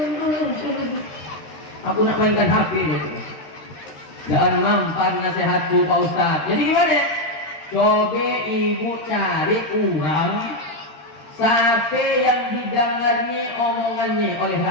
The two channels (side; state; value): right; late; 13 ms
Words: Aku nak mainkan HP gitu. Jangan mampan nasihatku Pak Ustaz. Jadi gimana? Coba ibu cari orang sampai yang didengarnya omongannya oleh